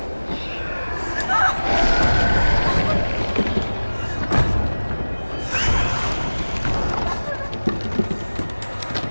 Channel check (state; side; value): inverted; both; correlation -1.00